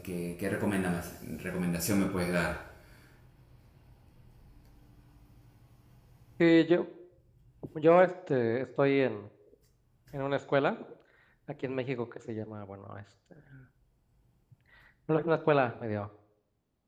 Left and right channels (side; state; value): both; identical; correlation 1.00